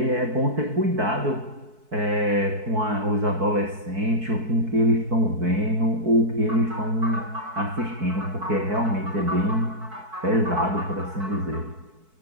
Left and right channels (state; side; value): late; left; 4.6 ms